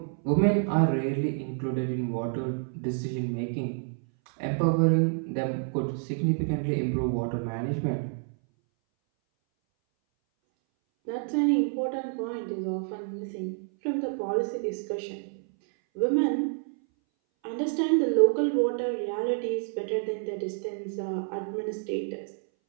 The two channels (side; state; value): left; silent; 59 dB below the other